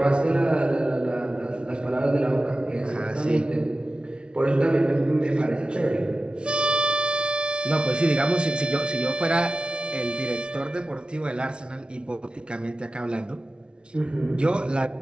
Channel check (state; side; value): late; left; 0.057 ms